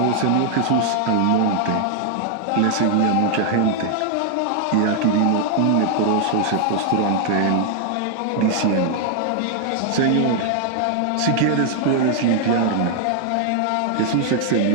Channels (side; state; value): both; different; correlation 0.00